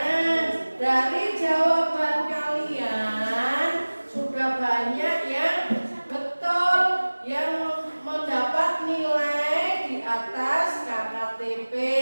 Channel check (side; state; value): both; inverted; correlation -1.00